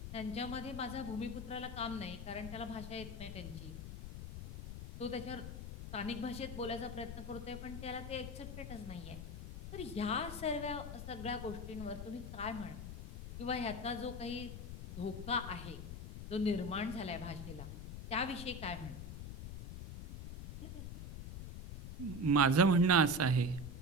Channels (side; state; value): left; noise; rumble, 8 dB below the sound